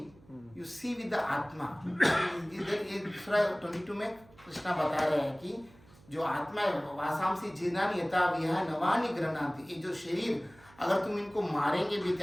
you see with the आत्मा. इधर ये दूसरा 22 में कृष्णा बता रहे हैं कि जो आत्मा है वासांसी जीर्णानि यथा विहाय नवानि गृह्णाति. ये जो शरीर अगर तुम इनको मारेंगे भी,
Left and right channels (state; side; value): noise; right; hum, 25 dB below the sound